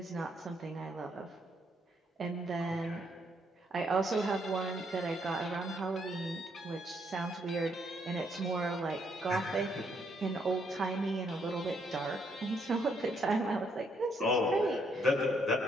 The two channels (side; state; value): both; normal; correlation 0.73